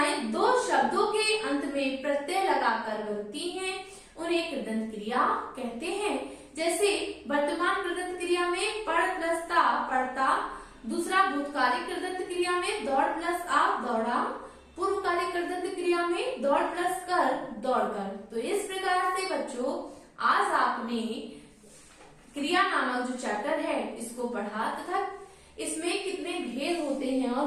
2 शब्दों के अंत में प्रत्यय लगाकर बनती हैं उन्हें कृदंत क्रिया कहते हैं। जैसे वर्तमान कृदंत क्रिया में पढ़ प्लस ता पढ़ता। दूसरा भूतकालिक कृदंत क्रिया में दौड़ प्लस आ दौड़ा। पूर्वकालिक कृदंत क्रिया में दौड़ प्लस कर दौड़कर। तो इस प्रकार से बच्चों आज आपने क्रिया नामक जो चैप्टर है इसको पढ़ा तथा इसमें कितने भेद होते हैं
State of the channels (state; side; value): identical; both; correlation 1.00